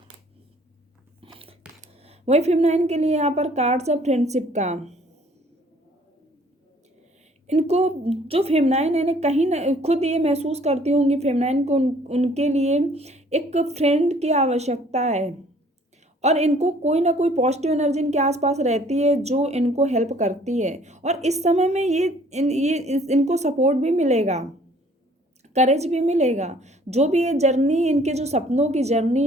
वही फेमिनाइन के लिए यहाँ पर कार्ड्स है फ्रेंडशिप का। इनको जो फेमिनाइन है ना, कहीं न खुद ये महसूस करती होंगी फेमिनाइन को, उनके लिए एक फ्रेंड की आवश्यकता है। और इनको कोई ना कोई पॉजिटिव एनर्जी इनके आसपास रहती है जो इनको हेल्प करती है। और इस समय में इनको सपोर्ट भी मिलेगा, करेज भी मिलेगा। जो भी ये जर्नी, इनके जो सपनों की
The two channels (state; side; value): normal; both; correlation 0.58